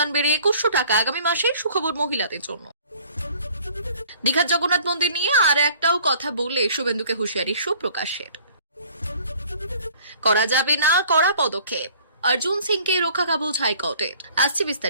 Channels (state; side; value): inverted; both; correlation -0.53